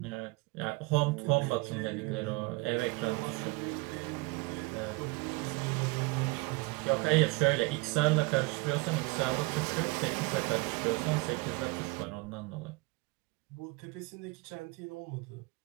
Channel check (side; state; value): left; quieter; 25.3 dB